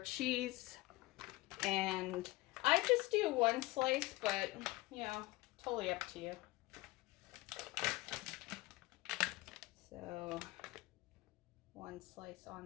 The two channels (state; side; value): quieter; right; 20.2 dB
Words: and I just do 1 slice, but you know, totally up to you. So 1 slice